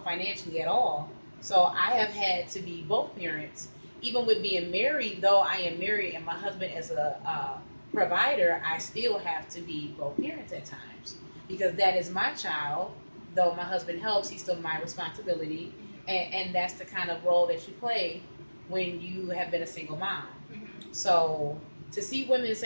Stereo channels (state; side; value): inverted; both; correlation -1.00